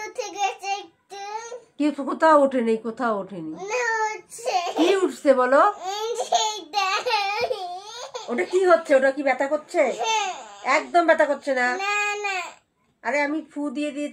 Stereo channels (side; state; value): both; identical; correlation 1.00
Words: কি? কোথাও ওঠেনি, কোথাও ওঠেনি। কি উঠছে বলো? ওটা কি হচ্ছে? ওটা কি ব্যথা করছে? একদম ব্যথা করছে না। আরে আমি ফু দিয়ে